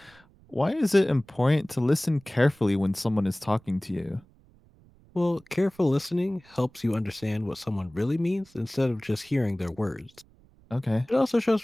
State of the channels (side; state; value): right; noise; rumble, 28 dB below the sound